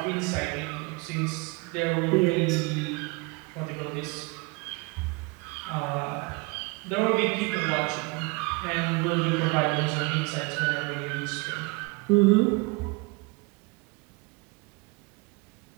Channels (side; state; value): left; quieter; 26.8 dB